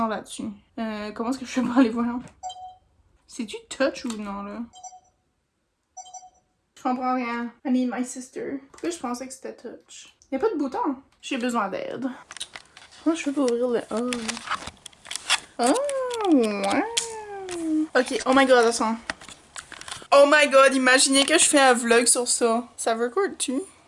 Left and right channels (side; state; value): both; identical; correlation 1.00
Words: là-dessus? Comment est-ce que je fais pour aller voir? C'est-tu touch ou non là? Je comprends rien. I need my sister. Pourquoi je pensais que c'était touch? Y'a pas de bouton. J'ai besoin d'aide. Comment je fais pour ouvrir le... Oh, ouais. Ok, oh my god, attends. Oh my god, imaginez que je fais un vlog sur ça. Ça record-tu?